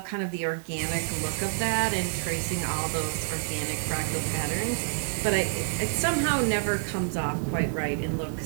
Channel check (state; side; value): silent; left; 59 dB below the other